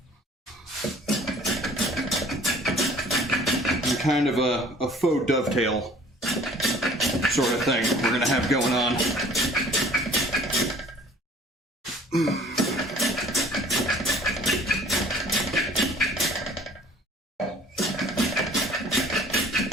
And kind of a faux dovetail sort of thing we're going to have going on.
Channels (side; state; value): both; normal; correlation 0.52